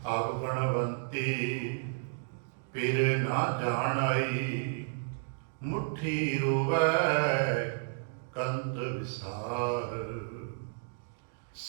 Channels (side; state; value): left; silent; digital silence